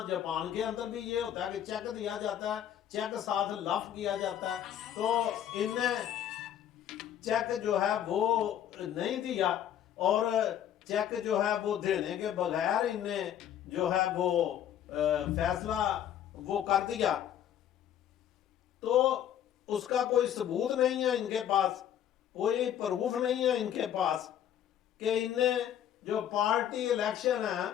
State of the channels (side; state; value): right; quieter; 10.3 dB